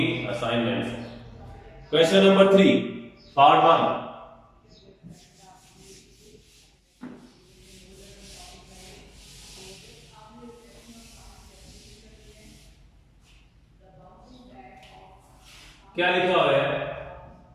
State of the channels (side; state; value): both; identical; correlation 1.00